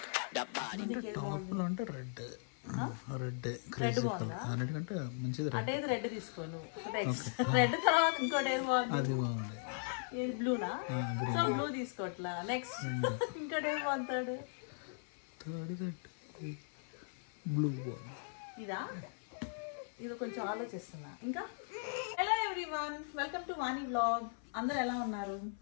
the body. టాప్లో అంటే red crazy colour అన్నిటికంటే మంచిది రెడ్. అంటే ఇది రెడ్ తీసుకోను. రెడ్ తర్వాత ఇంకోటి ఏది బాగుంది? అది బాగుంది. ఏది బ్లూనా? సో బ్లూ తీసుకోవట్లా. నెక్స్ట్ ఇంకోటి ఏది బాగుంటాడు? థర్డ్ బ్లూ బాగుంది. ఇదా? ఇది కొంచెం ఆలోచిస్తున్నా. ఇంకా hello everyone, welcome to Vani vlog. అందరు ఎలా ఉన్నారు?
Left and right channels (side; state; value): right; silent; 52 dB below the other